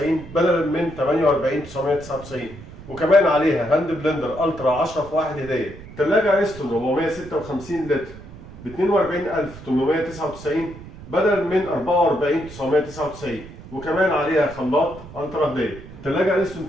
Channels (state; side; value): noise; right; rumble, 16 dB below the sound